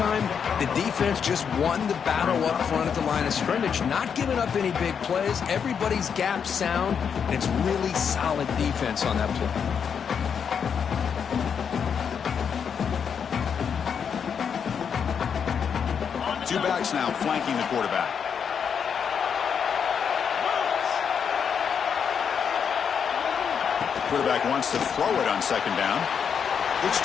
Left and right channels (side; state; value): right; quieter; 7.1 dB